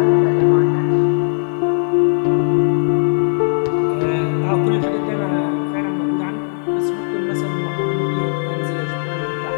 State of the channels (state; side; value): silent; right; 63 dB below the other